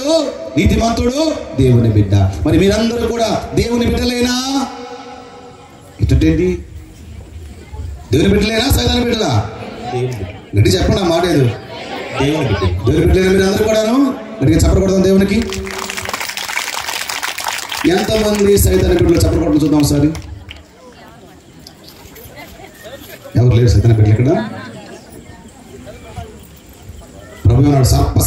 నీతిమంతుడు, దేవుని బిడ్డ. మరి మీరందరూ కూడా దేవుని బిడ్డలేనా? ఇటండి దేవుని బిడ్డలేనా, సైతాన్ బిడ్డలా? గట్టి చెప్పండి, ఆ మాట ఏదో. దేవుని బిడ్డలేనా మీరందరూ కూడాను? గట్టిగా చెప్పకూడదు దేవునికి. ఎంతమంది సైతాన్ బిడ్డలు చెప్పకూడదు చూద్దాం ఒకసారి. ఎవరు లేరు సైతాన్ బిడ్డలు ఇక్కడ? ప్రభు అన్నాడు సర్ప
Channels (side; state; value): both; identical; correlation 1.00